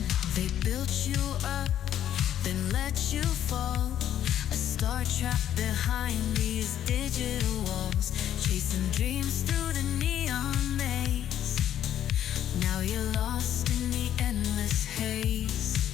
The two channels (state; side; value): quieter; right; 10.9 dB